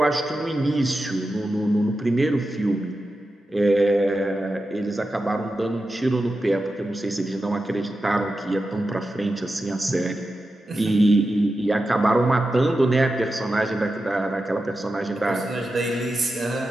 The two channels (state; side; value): normal; both; correlation 0.91